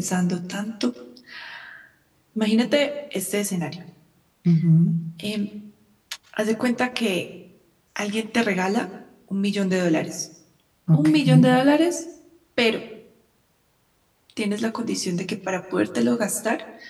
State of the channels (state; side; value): identical; both; correlation 1.00